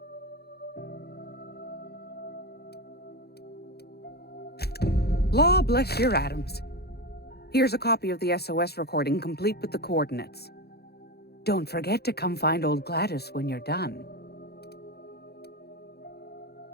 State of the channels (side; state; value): right; late; 0.47 ms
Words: Law bless your atoms. Here's a copy of the SOS recording, complete with the coordinates. Don't forget to come find old Gladys when you're done.